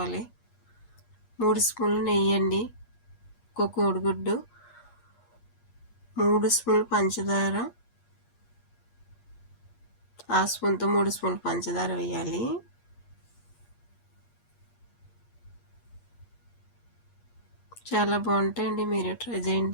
3 స్పూన్లు నెయ్యి అండి, ఒక కోడిగుడ్డు, 3 స్పూన్లు పంచదార, ఆ స్పూన్తో 3 స్పూన్లు పంచదార వేయాలి. చాలా బాగుంటాయండి, మీరు ట్రై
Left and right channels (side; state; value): right; late; 8.5 ms